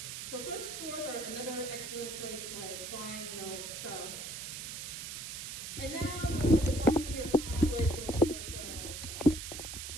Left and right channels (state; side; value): noise; right; hiss, 7 dB below the sound